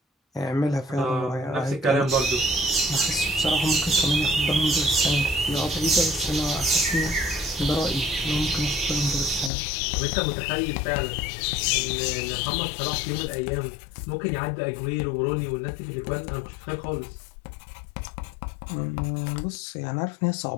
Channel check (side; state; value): right; drops out; at 9.5 s